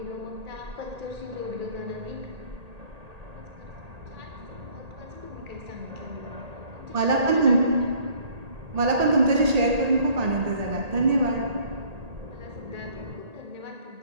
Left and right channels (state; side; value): late; left; 1.8 ms